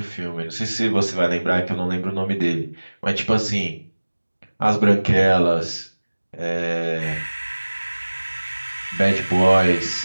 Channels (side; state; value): both; inverted; correlation -1.00